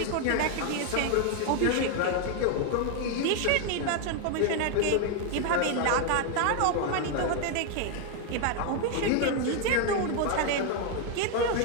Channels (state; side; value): different; both; correlation 0.01